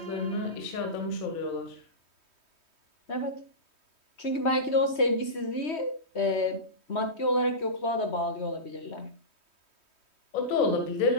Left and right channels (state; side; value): late; right; 3.2 ms